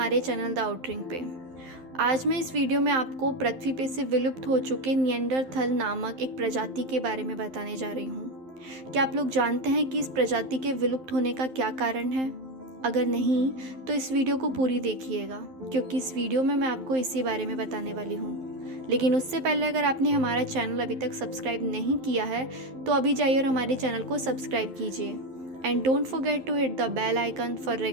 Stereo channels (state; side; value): late; left; 11 ms